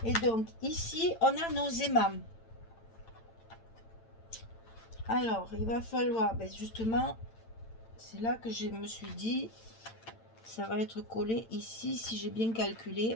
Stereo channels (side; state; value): right; late; 8.9 ms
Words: Et donc ici on a nos aimants. Alors il va falloir, ben justement, c'est là que je me suis dit, ça va être collé ici si j'ai bien calculé.